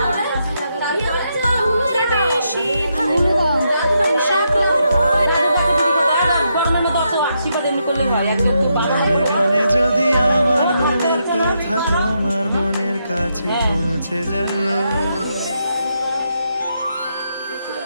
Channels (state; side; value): inverted; both; correlation -0.81